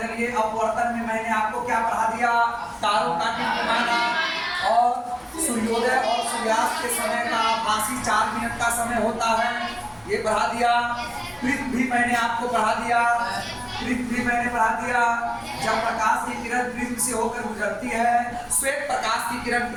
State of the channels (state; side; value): identical; both; correlation 1.00